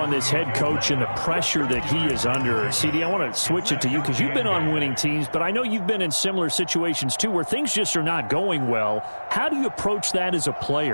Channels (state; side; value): inverted; both; correlation -1.00